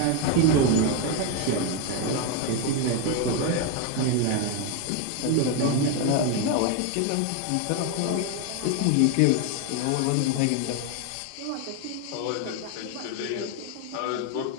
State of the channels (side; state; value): both; different; correlation 0.02